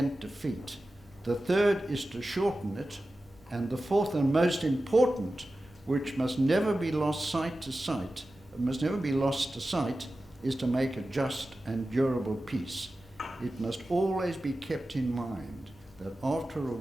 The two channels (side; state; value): both; normal; correlation 0.94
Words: defeat. The third is to shorten it. And the fourth and most important, which must never be lost to sight, is to make a just and durable peace. It must always be kept in mind that after a